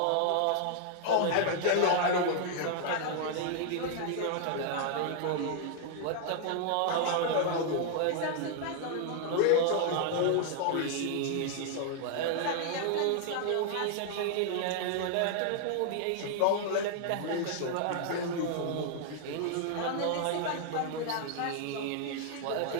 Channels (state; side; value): different; both; correlation 0.00